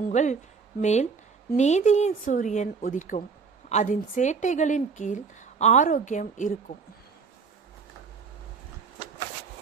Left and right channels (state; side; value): quieter; left; 5.2 dB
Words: உங்கள் மேல் நீதியின் சூரியன் உதிக்கும், அதன் சேட்டைகளின் கீழ் ஆரோக்கியம் இருக்கும்.